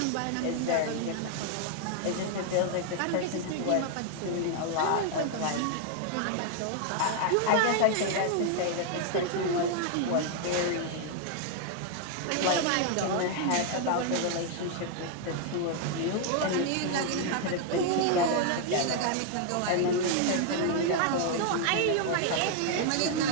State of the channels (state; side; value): different; both; correlation 0.00